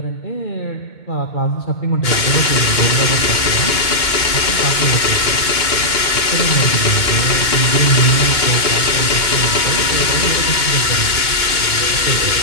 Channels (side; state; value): right; late; 2.2 ms